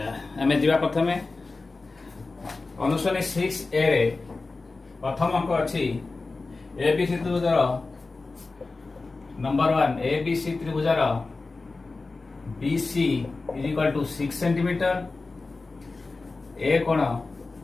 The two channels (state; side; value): quieter; right; 3.7 dB